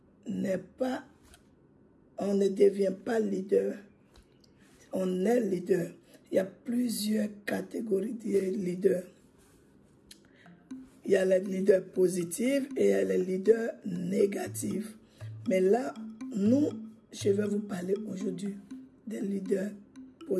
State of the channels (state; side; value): identical; both; correlation 1.00